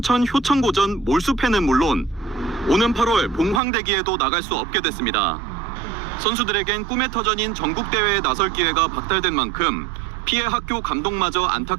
효천고전 몰수패는 물론 오는 8월 봉황대기에도 나갈 수 없게 됐습니다. 선수들에겐 꿈의 터전인 전국대회에 나설 기회가 박탈된 만큼 피해 학교 감독마저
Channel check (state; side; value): drops out; left; at 3.6 s